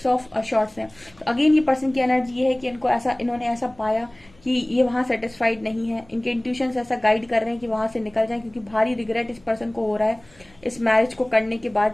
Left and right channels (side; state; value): left; noise; hum, 29 dB below the sound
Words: of shorts हैं। तो अगेन ये पर्सन की एनर्जी ये है कि इन्होंने ऐसा पाया कि ये वहां सेटिस्फाइड नहीं है, इनके इंट्यूशंस ऐसा गाइड कर रहे हैं कि वहां से निकल जाएं, क्योंकि भारी रिग्रेट इस पर्सन को हो रहा है इस मैरिज को करने के